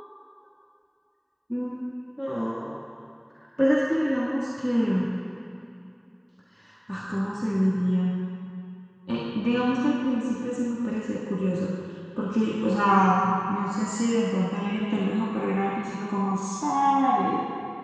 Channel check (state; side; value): identical; both; correlation 1.00